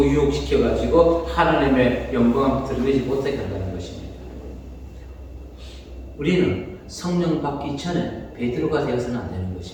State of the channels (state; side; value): identical; both; correlation 1.00